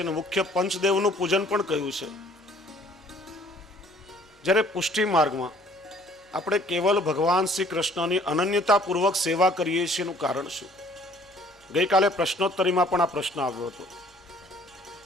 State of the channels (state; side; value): normal; both; correlation 0.57